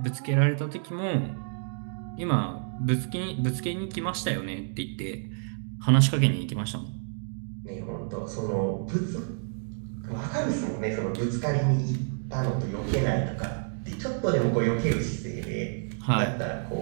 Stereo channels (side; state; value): left; silent; digital silence